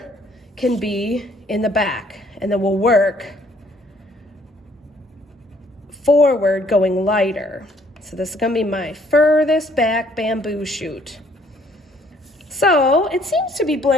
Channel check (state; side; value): normal; both; correlation 0.63